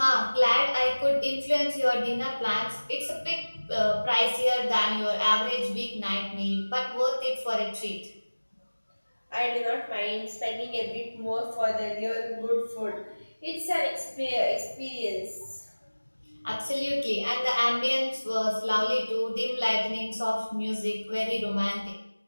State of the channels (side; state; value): both; inverted; correlation -1.00